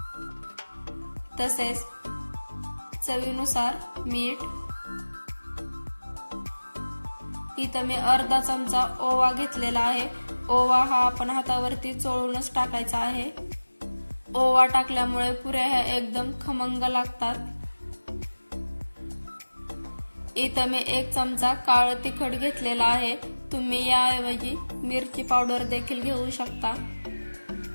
तसेच चवीनुसार मीठ। इथे मी अर्धा चमचा ओवा घेतलेला आहे। ओवा हा आपण हातावरती चोळूनच टाकायचा आहे। ओवा टाकल्यामुळे पुऱ्या ह्या एकदम खमंग लागतात। इथे मी 1 चमचा काळं तिखट घेतलेला आहे। तुम्ही याऐवजी मिरची पावडर देखील घेऊ शकता।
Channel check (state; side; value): inverted; both; correlation -1.00